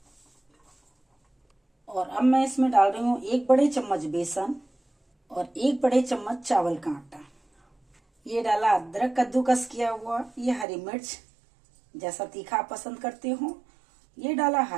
और अब मैं इसमें डाल रही हूँ 1 बड़े चम्मच बेसन और 1 बड़े चम्मच चावल का आटा। ये डाला अदरक कद्दूकस किया हुआ, ये हरी मिर्च जैसा तीखा आप पसंद करते हो, ये डाला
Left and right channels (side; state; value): left; drops out; at 10.7 s